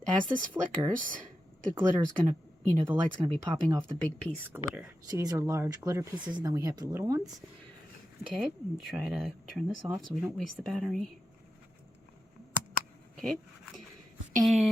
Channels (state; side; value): normal; both; correlation 0.89